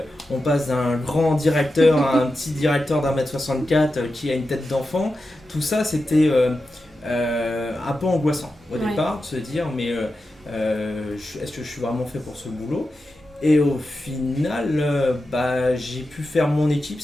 on passe d'un grand directeur à un petit directeur d'1m64 qui a une tête d'enfant. Tout ça c'était un peu angoissant au départ, de se dire mais est-ce que je suis vraiment fait pour ce boulot ? Et au final, j'ai pu faire mon équipe,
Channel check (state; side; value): normal; both; correlation 0.91